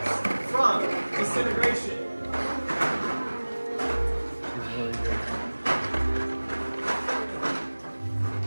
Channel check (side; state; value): both; inverted; correlation -1.00